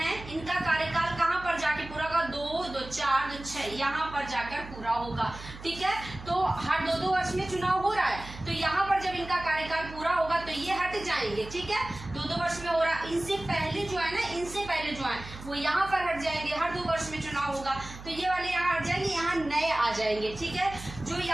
इनका कार्यकाल कहाँ पर जाके पूरा होगा, 2, 2, 4, 2, 6 यहाँ पर जाकर पूरा होगा, ठीक है। तो हर 2-2 वर्ष में चुनाव हो रहा है, तो यहाँ पर जब इनका कार्यकाल पूरा होगा तो ये हट जाएंगे, ठीक है। 2-2 वर्ष में हो रहा, इनसे पहले जो है ना, इनसे पहले जो है वो यहाँ पर हट जाएंगे, हर 2 वर्ष में चुनाव होगा तो ये वाले यहाँ हट जाएंगे, यहाँ नए आ जाएंगे, ठीक है। जो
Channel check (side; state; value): right; noise; hum, 14 dB below the sound